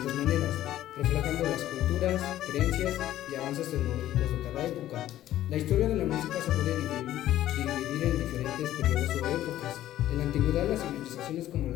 maneras, reflejando las culturas, creencias y avances tecnológicos de cada época. La historia de la música se puede dividir en diferentes periodos o épocas. En la antigüedad, las civilizaciones como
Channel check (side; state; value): right; quieter; 13.3 dB